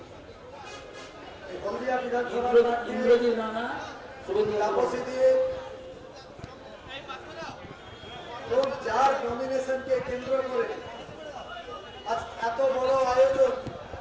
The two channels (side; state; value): both; identical; correlation 1.00